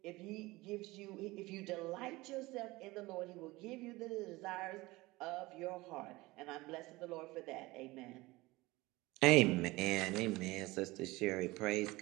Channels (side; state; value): left; quieter; 20.7 dB